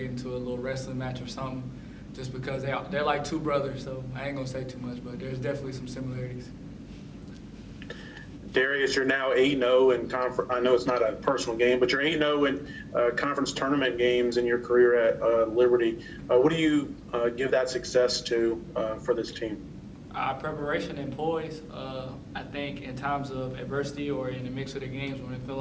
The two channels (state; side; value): identical; both; correlation 1.00